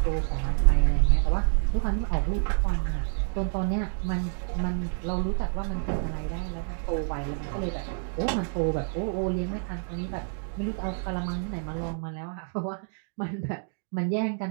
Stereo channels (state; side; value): silent; left; digital silence